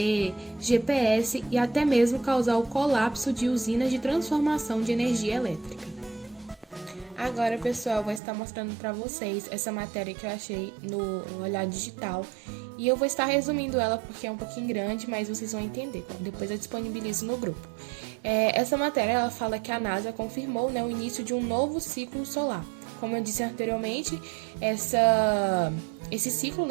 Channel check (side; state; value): left; drops out; at 8.2 s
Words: GPS e até mesmo causar o colapso de usinas de transformação de energia elétrica. Agora, pessoal, eu vou estar mostrando para vocês essa matéria que eu achei no Olhar Digital. E eu vou estar resumindo ela porque é um pouquinho grande, mas vocês vão entender. Depois eu disponibilizo no grupo. Essa matéria, ela fala que a NASA confirmou, né, o início de um novo ciclo solar. Como eu disse anteriormente, esse ciclo,